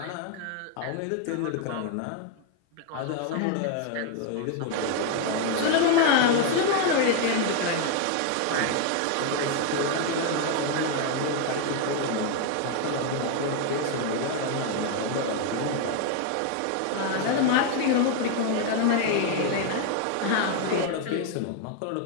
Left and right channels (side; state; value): both; different; correlation 0.01